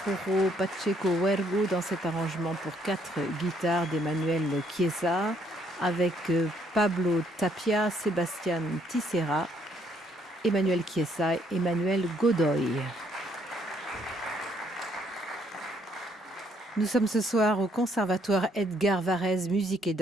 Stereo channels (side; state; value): both; normal; correlation 0.68